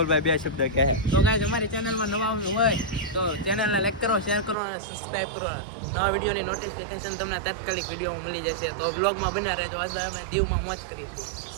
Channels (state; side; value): drops out; left; at 4.5 s